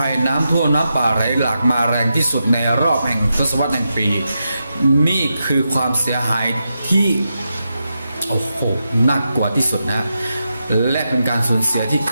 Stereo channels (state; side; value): inverted; both; correlation -0.87